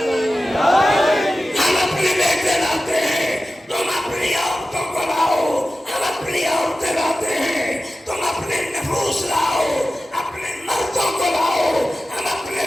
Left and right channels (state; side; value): normal; both; correlation 0.94